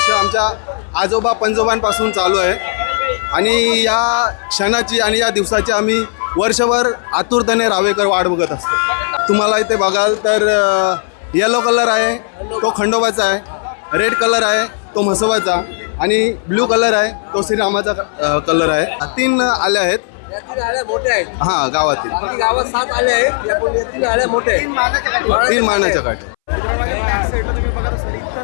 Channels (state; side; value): silent; right; 66 dB below the other